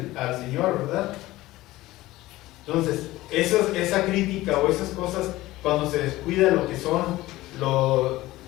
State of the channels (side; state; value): right; quieter; 17.5 dB